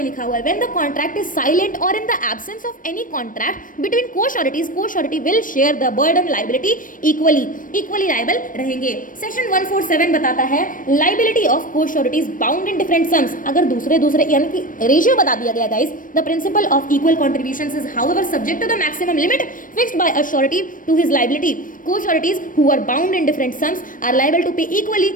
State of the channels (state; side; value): late; right; 0.39 ms